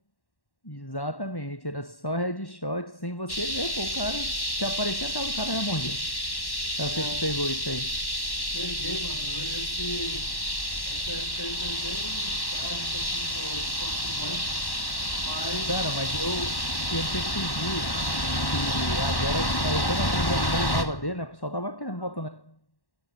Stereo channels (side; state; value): right; late; 1.1 ms